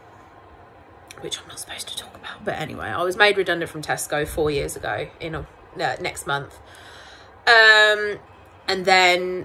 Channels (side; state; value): both; identical; correlation 1.00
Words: which I'm not supposed to talk about, but anyway, I was made redundant from Tesco 4 years ago next month. And